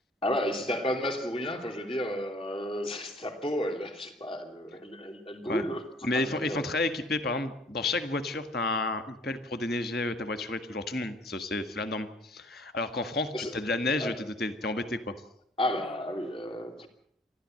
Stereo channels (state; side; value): normal; both; correlation 0.55